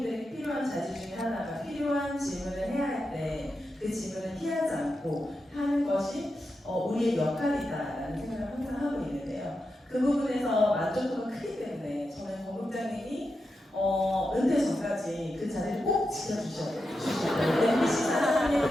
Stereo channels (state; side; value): normal; both; correlation 0.88